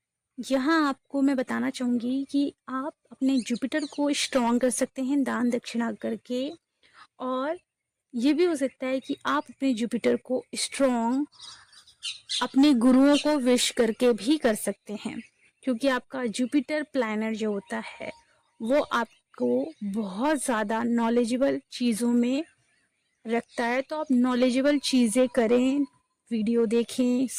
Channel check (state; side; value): identical; both; correlation 1.00